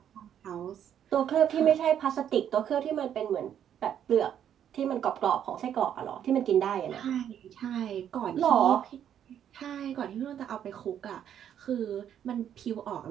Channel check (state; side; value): quieter; left; 9.6 dB